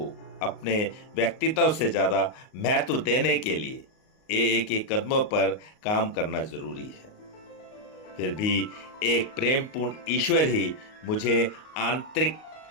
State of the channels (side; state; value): right; late; 38 ms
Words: अपने व्यक्तित्व से ज्यादा महत्व देने के लिए एक एक कदमों पर काम करना जरूरी है। फिर भी एक प्रेमपूर्ण ईश्वर ही मुझे आंतरिक